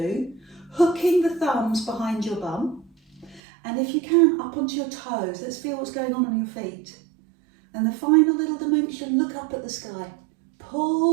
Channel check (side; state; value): left; drops out; at 3.4 s